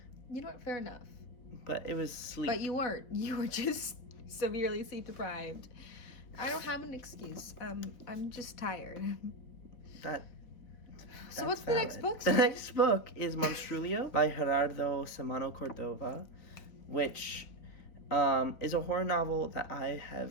You know what? Fair enough. But it was sleep. But you weren't. You were just severely sleep deprived. I don't have an excuse. I'm just tired. So what's valid. The next book? The next book is Monstrulio by Gerardo Samano Cordova, which is a horror novel that I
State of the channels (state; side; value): late; right; 4.1 ms